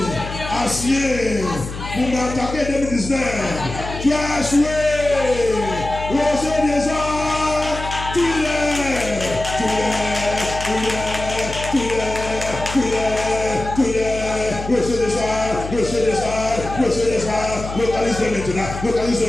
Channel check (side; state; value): left; noise; hum, 9 dB below the sound